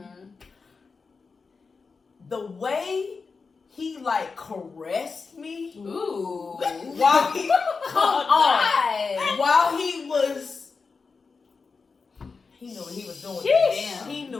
The way he, like, caressed me. Ooh. While he, come on. While he was. He knew what he was doing with that. He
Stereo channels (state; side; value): quieter; right; 4.7 dB